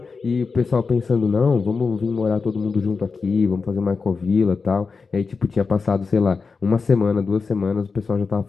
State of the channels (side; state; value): right; quieter; 4.8 dB